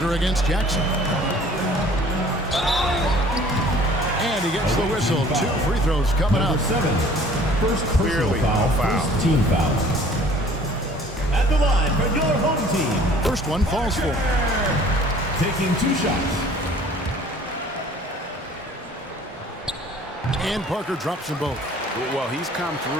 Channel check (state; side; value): normal; both; correlation 0.52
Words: against Jackson. And he gets the whistle. 2 free throws coming up. First clearly foul. First team foul. At the line for your home team. First one falls for. Taking 2 shots. And Parker drops them both. Well, he's come